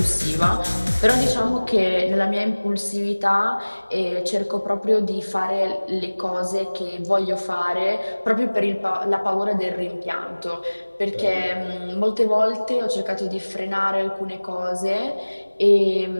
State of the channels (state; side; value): inverted; both; correlation -1.00